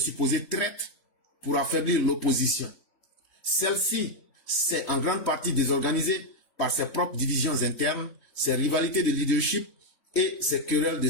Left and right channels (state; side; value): late; right; 3.1 ms